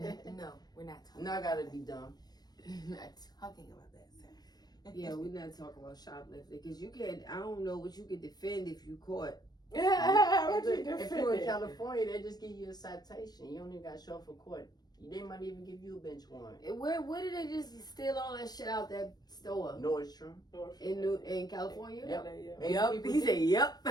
No, we're not talking No, I gotta be dumb. We're not talking about that, sir. Yeah, we're not talking about shoplifting because you can't. I don't know what you could defend if you caught. Yeah, what you If you're in defending? California, they just give you a citation. You don't even got to show up for court. They might even give you a bench warrant. Where did they just steal all that shit out that store Nordstrom. in California? Yep. Yeah. 80 Yup. people He deep. said, "Yup."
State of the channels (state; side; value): late; right; 0.19 ms